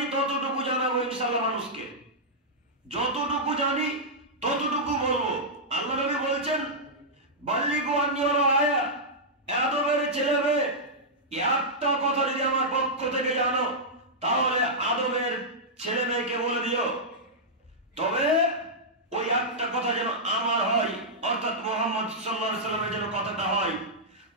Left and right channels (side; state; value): both; normal; correlation -0.10